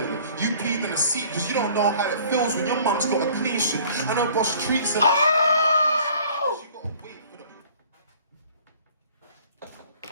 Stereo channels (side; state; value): both; inverted; correlation -0.52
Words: You peed in the seat because you don't know how it feels when your mum's got a clean shit. I know boss treats her. Oh! You gotta wait for the...